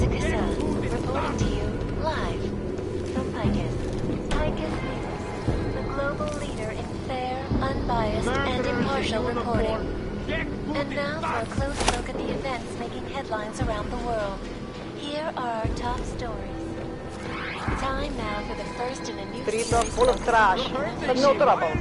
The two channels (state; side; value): identical; both; correlation 1.00